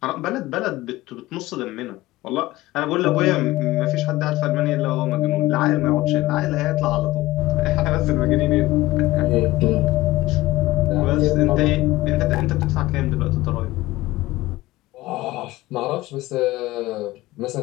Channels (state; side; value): quieter; right; 18.4 dB